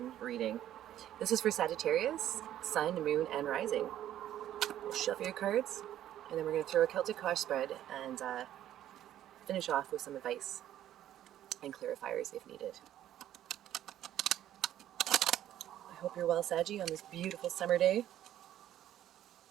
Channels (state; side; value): quieter; left; 12.0 dB